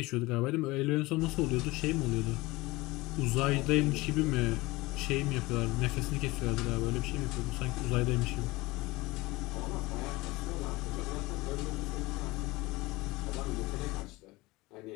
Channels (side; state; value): right; quieter; 21.4 dB